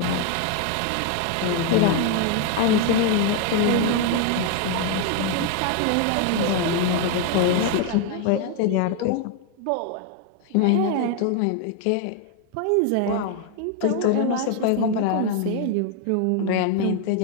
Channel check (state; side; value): different; both; correlation 0.01